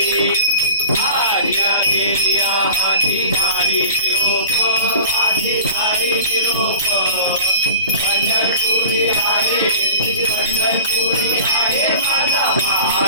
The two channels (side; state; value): both; inverted; correlation -0.41